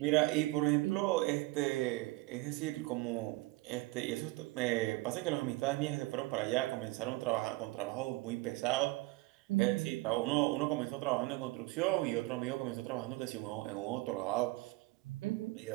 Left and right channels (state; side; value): quieter; left; 21.6 dB